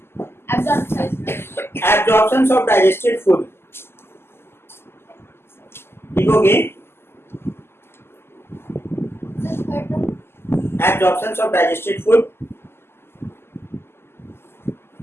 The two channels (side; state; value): right; late; 0.12 ms